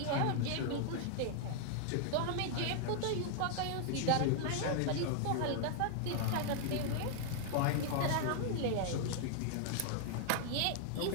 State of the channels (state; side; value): different; both; correlation -0.01